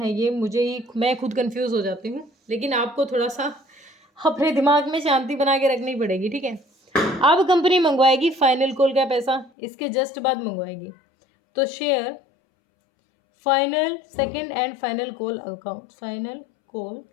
है ये, मैं खुद कंफ्यूज हो जाती हूँ, लेकिन आपको थोड़ा सा अपने दिमाग में शांति बना के रखनी पड़ेगी, ठीक है। अब कंपनी मंगवाएगी फाइनल कॉल का पैसा, इसके जस्ट बाद मंगवाएगी। तो share final, second and final call account, final call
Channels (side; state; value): right; drops out; at 9.5 s